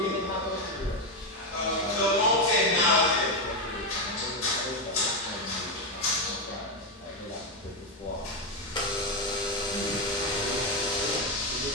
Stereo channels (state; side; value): normal; both; correlation 0.07